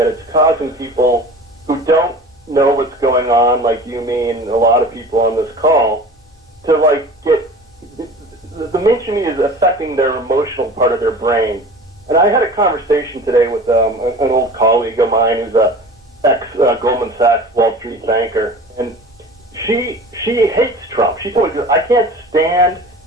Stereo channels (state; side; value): normal; both; correlation 0.39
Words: it's causing people who don't know what's going on, like you, me, and a lot of people on this call, to get the mainstream media is affecting their emotional part of their brain. And I had a conversation today with an old colleague of mine who's a ex-Goldman Sachs Wall Street banker, and she hates Trump. She told me, I can't stand